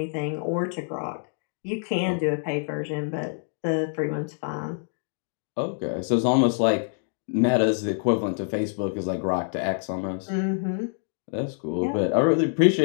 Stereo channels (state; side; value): silent; right; digital silence